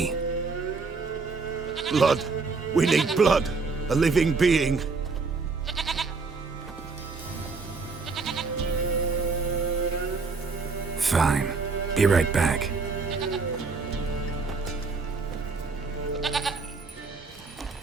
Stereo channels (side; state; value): left; quieter; 4.3 dB